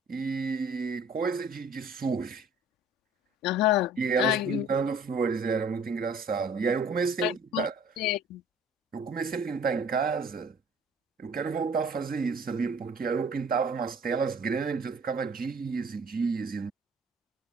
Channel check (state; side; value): normal; both; correlation 0.51